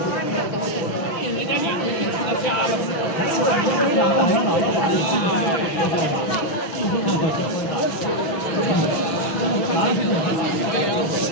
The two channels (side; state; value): right; late; 6.1 ms